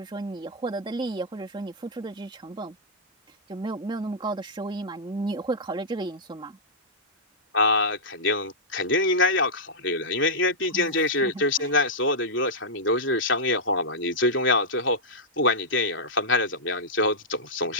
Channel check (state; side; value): normal; both; correlation -0.10